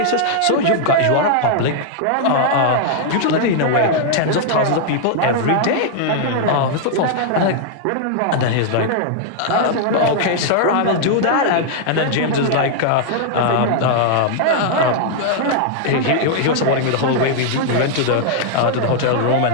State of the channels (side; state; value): both; different; correlation -0.01